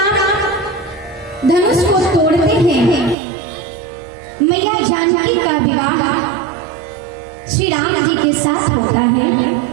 धनुष को तोड़ते हैं। मैया जानकी का विवाह श्री राम जी के साथ होता है।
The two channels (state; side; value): drops out; left; at 3.2 s